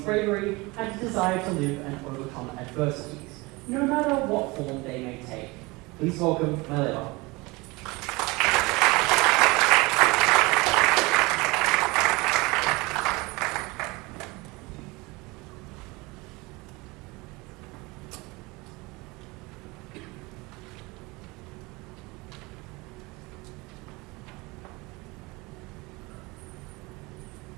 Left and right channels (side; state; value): left; quieter; 24.2 dB